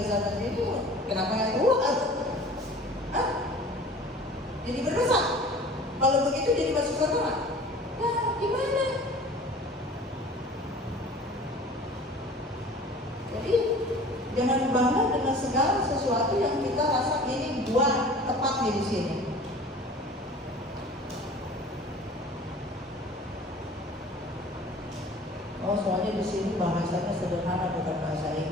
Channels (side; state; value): both; normal; correlation 0.44